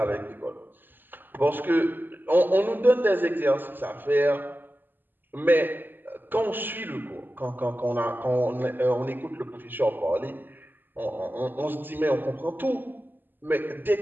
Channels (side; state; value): left; late; 0.091 ms